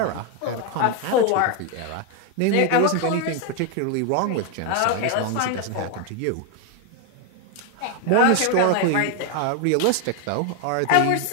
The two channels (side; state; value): both; different; correlation 0.01